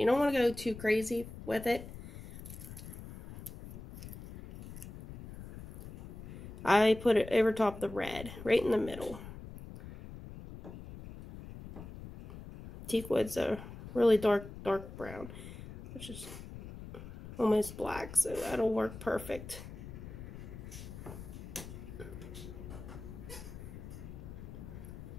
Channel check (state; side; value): noise; left; rumble, 12 dB below the sound